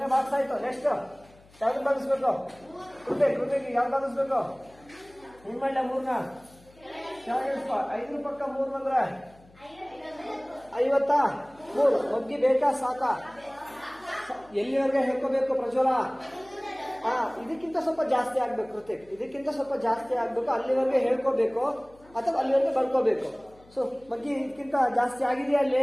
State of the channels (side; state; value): left; noise; hum, 27 dB below the sound